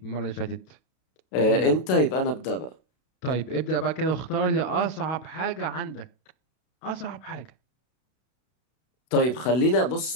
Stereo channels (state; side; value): late; right; 32 ms